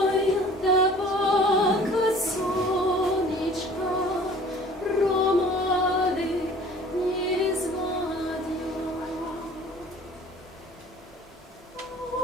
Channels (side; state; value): both; normal; correlation 0.49